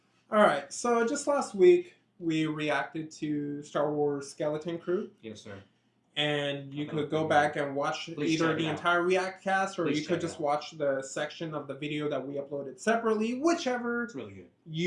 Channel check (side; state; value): both; identical; correlation 1.00